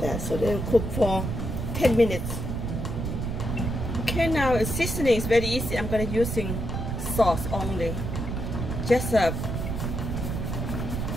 that. So then cook for 10 minutes. Okay, now seasoning is very easy. I'm gonna using sauce only. Just that's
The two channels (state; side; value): noise; right; rumble, 3 dB below the sound